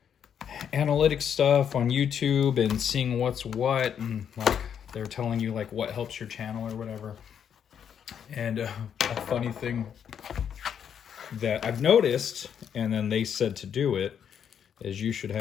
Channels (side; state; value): right; quieter; 8.3 dB